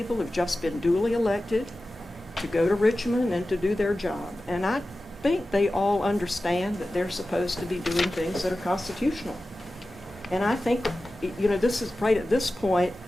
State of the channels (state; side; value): normal; both; correlation 0.95